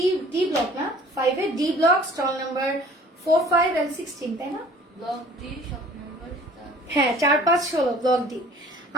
ডি ব্লক না, 5 এ D block, stall number 4, 5 and 16, তাই না? ব্লক ডি শপ নাম্বার হ্যাঁ, 4, 5, 16 ব্লক ডি।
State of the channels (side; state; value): both; normal; correlation 0.50